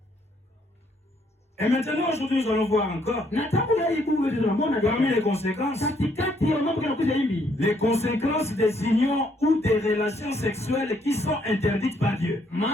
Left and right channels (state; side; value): normal; both; correlation 0.69